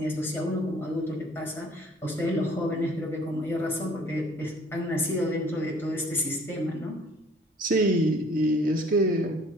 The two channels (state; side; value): normal; both; correlation 0.54